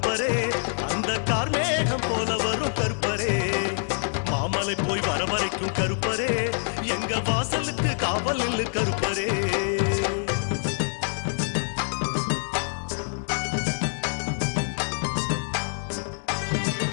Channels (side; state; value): right; silent; digital silence